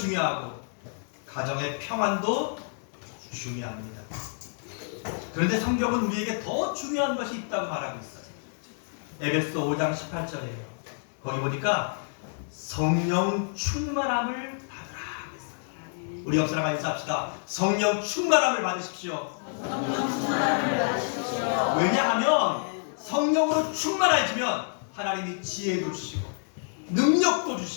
가정의 평안도 중요합니다. 그런데 성경은 우리에게 더 중요한 것이 있다고 말하고 있어요. 에베소 5장 18절이에요. 거기 보니까 성령 충만함을 받으라 했어요. 우리 옆 사람과 인사합시다. 성령 충만함을 받으십시오. 왜냐하면 성령으로 충만해지면 하나님이 지혜도 주시고 능력도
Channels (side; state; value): right; silent; digital silence